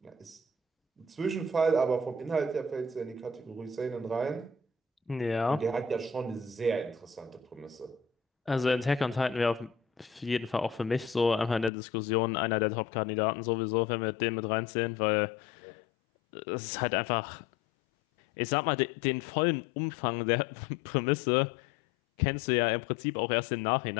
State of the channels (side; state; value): right; drops out; at 11.7 s